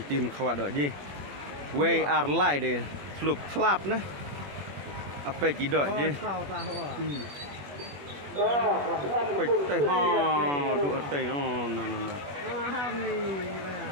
tim khawat dok je. We are lie deh. Slup slap nah. Apa je dok je. Baik teh ha duk teh no.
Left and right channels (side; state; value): left; late; 21 ms